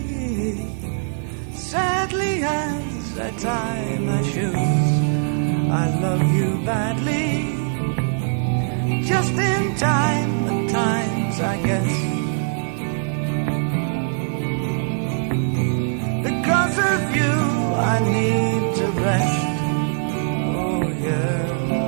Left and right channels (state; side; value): silent; left; 57 dB below the other